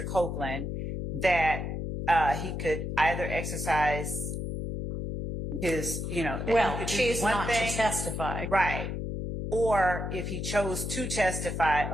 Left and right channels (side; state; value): left; noise; hum, 4 dB below the sound